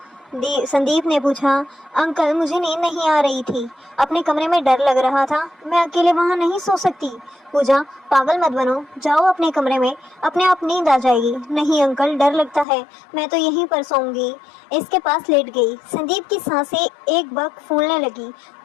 संदीप ने पूछा। अंकल, मुझे नींद नहीं आ रही थी, अपने कमरे में डर लग रहा था, मैं अकेले वहाँ नहीं सो सकती। पूजा, पागल मत बनो, जाओ अपने कमरे में, अपने आप नींद आ जाएगी। नहीं अंकल, डर लगता है, मैं तो यहीं पर सोऊंगी। इसके पास लेट गई। संदीप की सांसें एक बक फूलने लगी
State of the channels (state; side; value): drops out; right; at 12.7 s